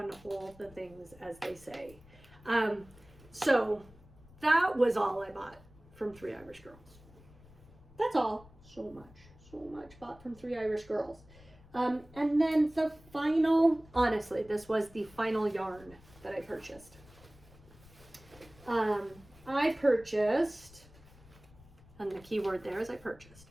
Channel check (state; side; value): noise; left; rumble, 23 dB below the sound